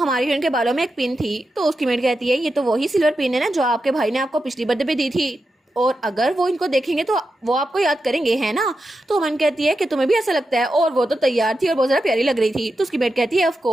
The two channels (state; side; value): normal; both; correlation 0.89